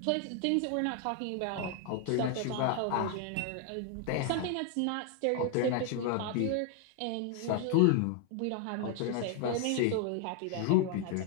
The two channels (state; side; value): different; both; correlation 0.00